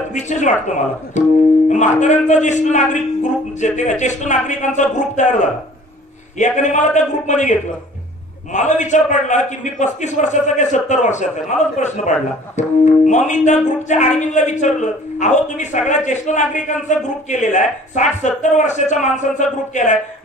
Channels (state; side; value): normal; both; correlation 0.50